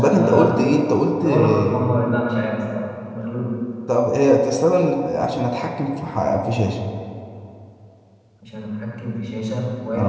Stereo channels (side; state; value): both; identical; correlation 1.00